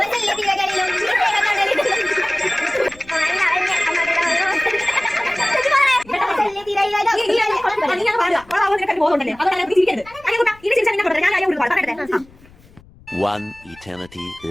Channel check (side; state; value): left; noise; rumble, 26 dB below the sound